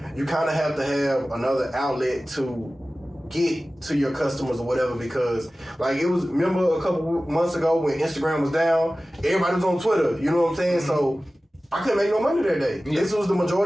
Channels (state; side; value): normal; both; correlation 0.96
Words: you kind of have to have another outlet to get to your customers or whatever, because like it was, remember a couple months ago when Instagram was down, everybody was on Twitter, you know what I'm saying? Mm-hmm. So I couldn't make no money that day. Yeah. This was the